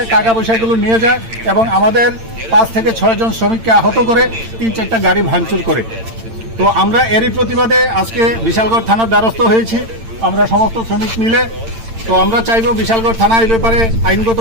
টাকা পয়সাগুলো নিয়ে যায় এবং আমাদের 5 থেকে 6 জন শ্রমিককে আহত করে 3-4টা গাড়ি ভাঙচুর করে। তো আমরা এরই প্রতিবাদে আজকে বিশালগড় থানার দ্বারস্থ হয়েছি, আমরা সমস্ত শ্রমিক মিলে। তো আমরা চাইব বিশালগড় থানা এই ব্যাপারে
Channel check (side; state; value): left; late; 8.9 ms